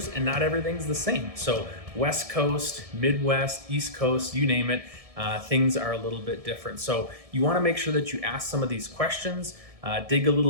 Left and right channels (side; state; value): left; late; 1.7 ms